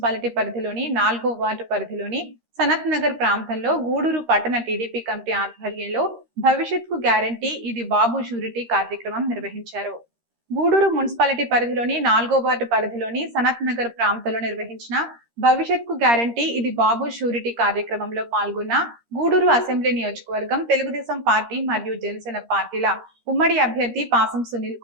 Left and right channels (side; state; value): left; late; 13 ms